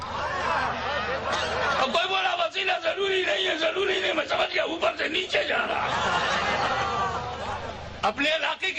اور کوئی بولا وسیلہ ضروری نہیں ہے، ضروری نہیں، میں سمجھ گیا اوپر سے نیچے جا رہا. اپنے علاقے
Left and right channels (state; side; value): identical; both; correlation 1.00